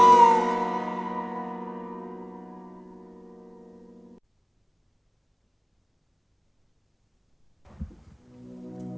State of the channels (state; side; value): identical; both; correlation 1.00